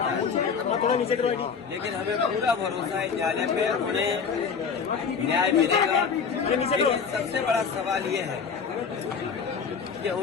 लेकिन हमें पूरा भरोसा है न्यायालय पे, उन्हें न्याय मिलेगा। लेकिन सबसे बड़ा सवाल ये है कि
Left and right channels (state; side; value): quieter; right; 6.1 dB